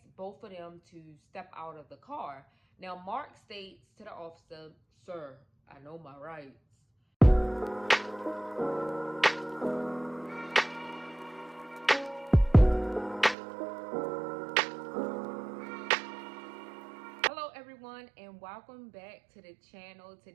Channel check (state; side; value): drops out; left; at 13.4 s